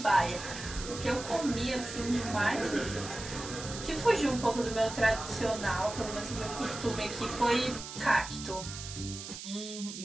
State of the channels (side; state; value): right; noise; hiss, 10 dB below the sound